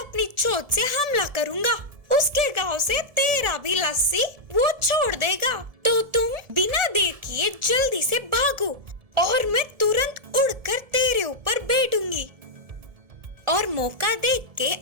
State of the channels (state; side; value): late; left; 1.7 ms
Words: चोंच से हमला करूंगा। उसके गांव से तेरा भी लस्सी वो छोड़ देगा। तो तुम बिना देर किए जल्दी से भागो और मैं तुरंत उड़कर तेरे ऊपर बैठूंगी। और मौका देख के